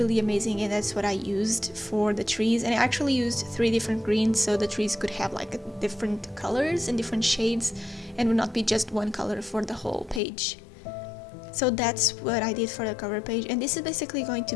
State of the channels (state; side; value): drops out; right; at 10.2 s